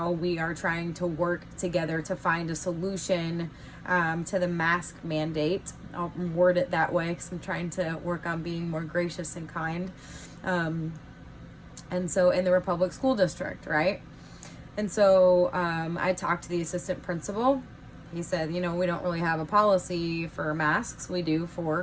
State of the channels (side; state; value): both; identical; correlation 1.00